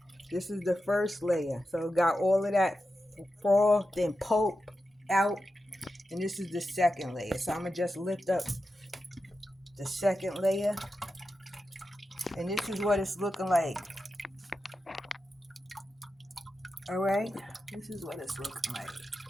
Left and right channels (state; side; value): normal; both; correlation 0.90